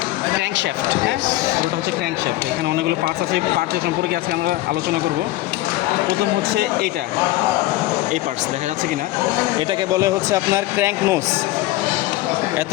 ক্র্যাঙ্কশ্যাফট, হ্যাঁ, পুরোটা হচ্ছে ক্র্যাঙ্কশ্যাফট। এখানে অনেকগুলো পার্টস আছে, পার্টসের সম্পর্কে আজকে আমরা আলোচনা করব। প্রথম হচ্ছে এইটা, এই পার্টস দেখা যাচ্ছে কি না, এটাকে বলে হচ্ছে আপনার ক্র্যাঙ্ক নোস।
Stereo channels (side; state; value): right; quieter; 17.0 dB